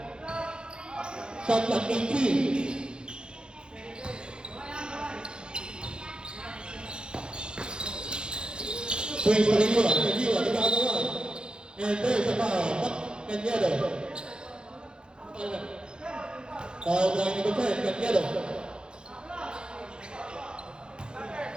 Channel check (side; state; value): left; late; 0.049 ms